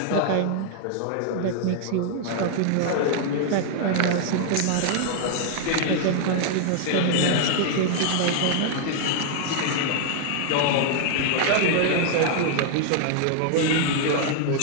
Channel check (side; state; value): both; different; correlation 0.00